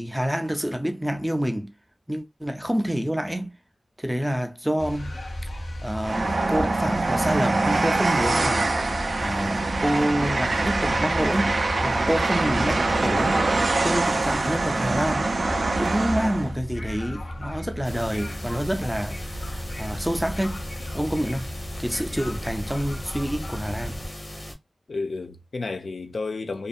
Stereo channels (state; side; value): normal; both; correlation 0.97